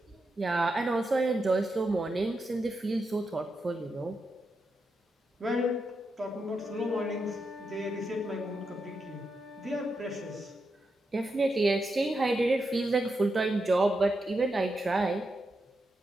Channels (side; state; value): both; normal; correlation 0.85